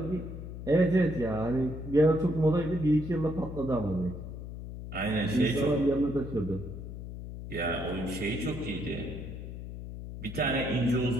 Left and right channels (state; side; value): noise; left; hum, 9 dB below the sound